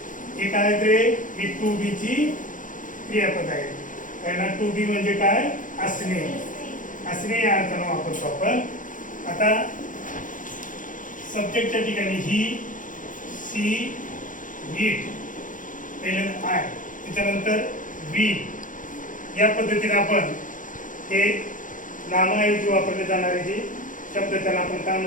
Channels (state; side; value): late; right; 0.38 ms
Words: हे काय ते ही टू बी ची क्रियापद आहे. त्यांना टू बी म्हणजे काय असणे. असणे या अर्थाने वापरतो आपण. आता सब्जेक्टच्या ठिकाणी ही, सी, इट, पहिल्यांदा आय, त्याच्यानंतर वी या पद्धतीने आपण हे नामाऐवजी वापरले जाणारे जे शब्द त्याला आपण काय